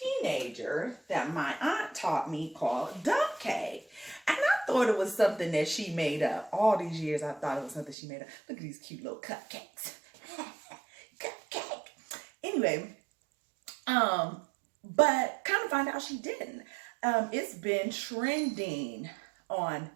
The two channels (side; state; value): left; drops out; at 8.0 s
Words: that my aunt taught me called dump cake. And I thought it was something that she made up. All these years I thought it was something she made up. Look at these cute little cupcakes. Cupcake. Anyway, but kind of find out she didn't. It's been trending